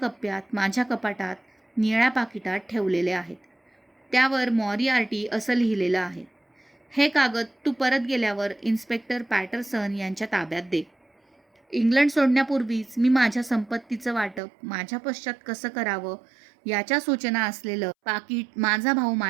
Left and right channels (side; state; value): left; drops out; at 14.4 s